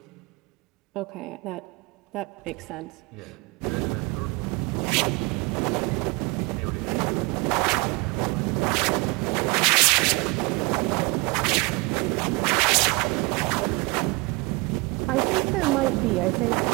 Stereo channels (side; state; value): left; quieter; 26.6 dB